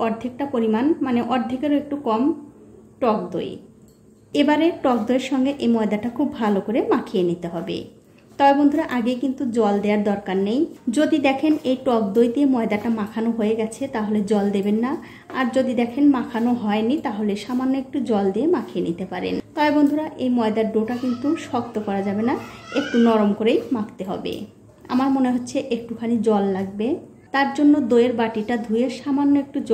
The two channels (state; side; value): identical; both; correlation 1.00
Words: অর্ধেকটা পরিমাণ, মানে অর্ধেকেরও একটু কম টক দই। এবারে টক দইয়ের সঙ্গে এই ময়দাটা খুব ভালো করে মাখিয়ে নিতে হবে। তবে বন্ধুরা আগে কিন্তু জল দেওয়ার দরকার নেই। যদি দেখেন এই টক দই দিয়ে ময়দাটা মাখানো হয়ে গেছে তাহলে জল দেবেন না, আর যদি দেখেন মাখানো হয়নি তাহলে সামান্য একটু জল দিয়ে মাখিয়ে নিতে পারেন। তবে বন্ধুরা এই ময়দার ডোটা কিন্তু শক্ত করা যাবে না, একটু নরম করেই মাখতে হবে। আমার মনে হচ্ছে একটুখানি জল লাগবে, তার জন্য দইয়ের বাটিটা ধুয়ে সামান্য একটু